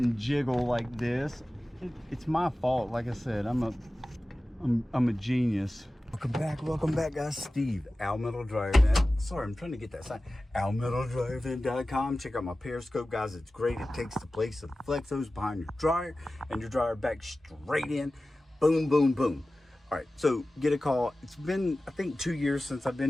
jiggle like this. It's my fault. Like I said, I'm a genius. Welcome back, guys. Steve, Al Metal Dryer Vent. Sorry, I'm trying to get that sign. AlMetalDryerVent.com. Check out my Periscope, guys. It's great. It takes the place of the flex hose behind your dryer, and your dryer back straight in. Boom, boom, boom. All right, so get a call. It's been, I think, 2 years since I've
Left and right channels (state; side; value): normal; both; correlation 0.96